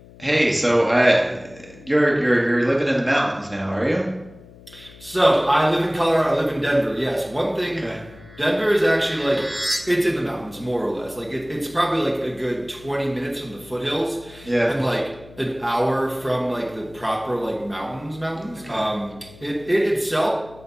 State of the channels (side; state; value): left; noise; hum, 22 dB below the sound